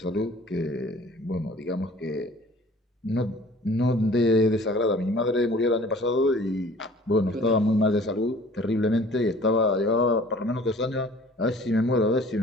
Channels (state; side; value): normal; both; correlation 0.50